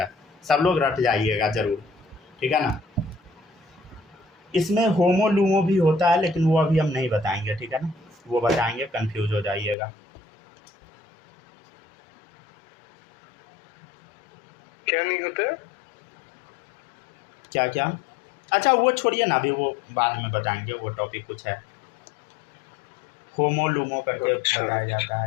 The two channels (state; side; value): drops out; right; at 9.8 s